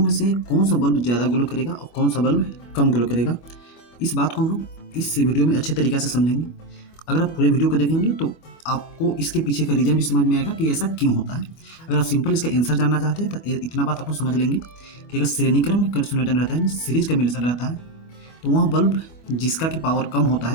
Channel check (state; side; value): late; right; 25 ms